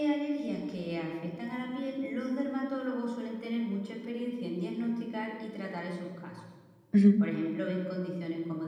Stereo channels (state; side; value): identical; both; correlation 1.00